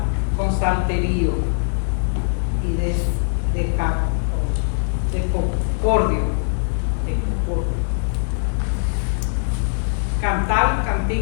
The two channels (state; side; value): silent; right; digital silence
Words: con salterio y de concordio. Cantad